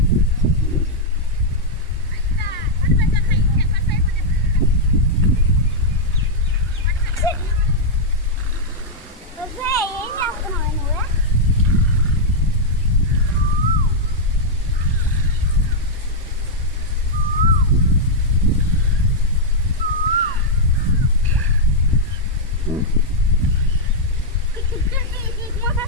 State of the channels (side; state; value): both; normal; correlation -0.05